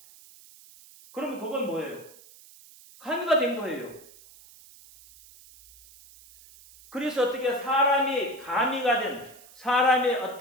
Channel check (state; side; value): noise; right; hiss, 23 dB below the sound